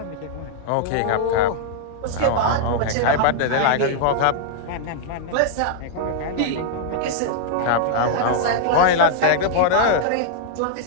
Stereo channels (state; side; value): different; both; correlation -0.01